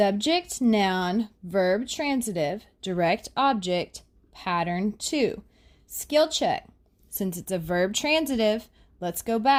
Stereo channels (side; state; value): both; identical; correlation 1.00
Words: noun, verb transitive, direct object, pattern 2. Skill check. Since it's a verb transitive, let's go